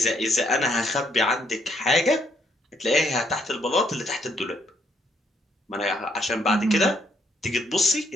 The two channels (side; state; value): both; normal; correlation 0.70